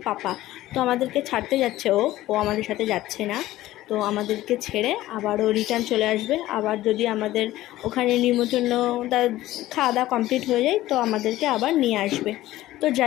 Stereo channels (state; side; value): quieter; right; 15.7 dB